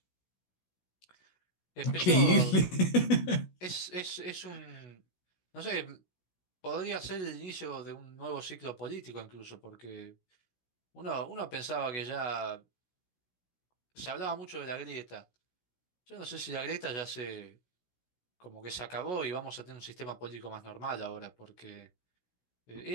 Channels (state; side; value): late; right; 16 ms